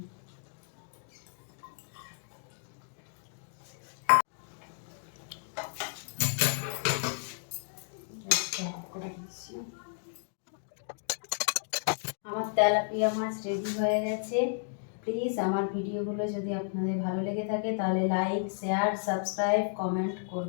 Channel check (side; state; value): right; silent; digital silence